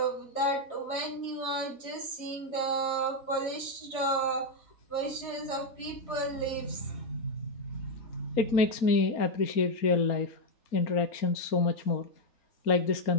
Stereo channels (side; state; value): right; late; 4.3 ms